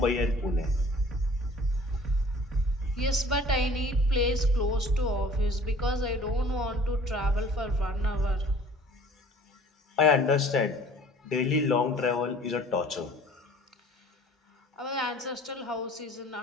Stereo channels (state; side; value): normal; both; correlation 0.50